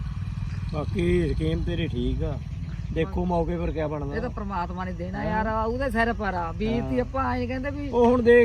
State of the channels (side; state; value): both; identical; correlation 1.00